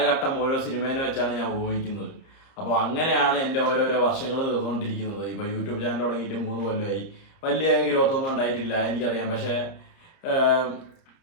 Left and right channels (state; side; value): late; right; 30 ms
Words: ഓരോ സിനിമേനെ വെച്ചാണ് ഞാൻ ഉപയോഗിക്കുന്നത്. അപ്പോൾ അങ്ങനെയാണ് എൻ്റെ ഓരോരോ വർഷങ്ങൾ തീർന്നുകൊണ്ടിരിക്കുന്നത്. ഇപ്പോൾ യൂട്യൂബ് ചാനൽ തുടങ്ങിയിട്ട് 3 കൊല്ലമായി. വലിയ ഗ്രോത്ത് ഒന്നും ഉണ്ടായിട്ടില്ല, എനിക്കറിയാം. പക്ഷേ